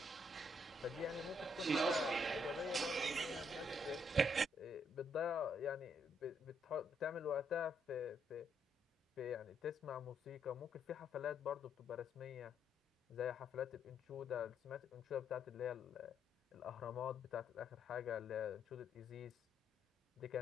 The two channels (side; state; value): both; normal; correlation 0.73